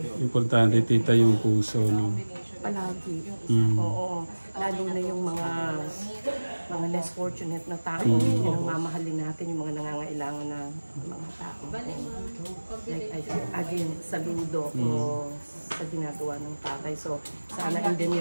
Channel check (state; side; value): inverted; both; correlation -1.00